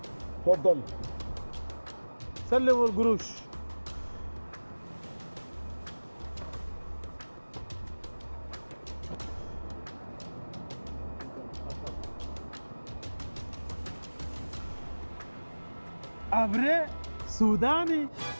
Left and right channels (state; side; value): inverted; both; correlation -1.00